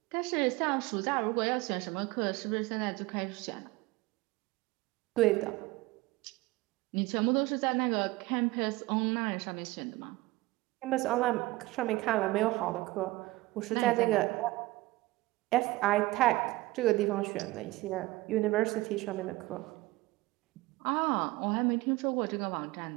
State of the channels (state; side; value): quieter; left; 20.2 dB